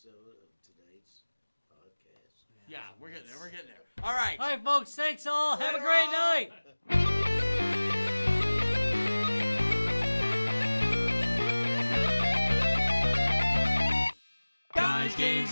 of tonight's podcast. Yeah, we're getting there. We're getting there. All right. All right, folks. Thanks all. Have a great night. Guys, games,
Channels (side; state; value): both; inverted; correlation -1.00